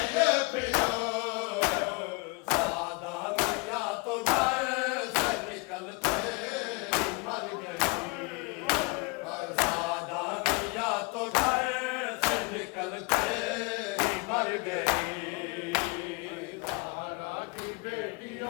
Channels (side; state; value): right; quieter; 29.0 dB